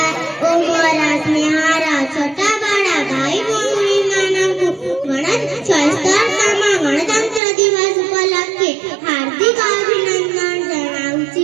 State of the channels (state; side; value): drops out; left; at 7.4 s